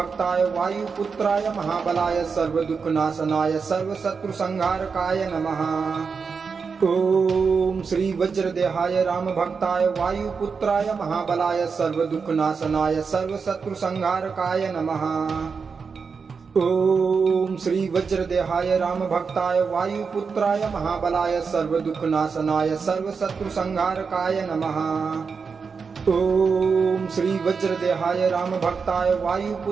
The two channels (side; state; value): left; quieter; 5.4 dB